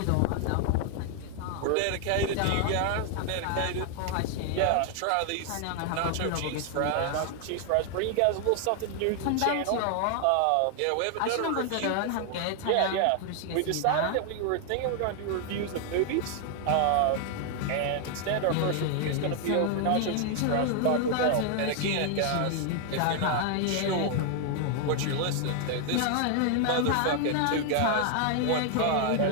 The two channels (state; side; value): different; both; correlation 0.00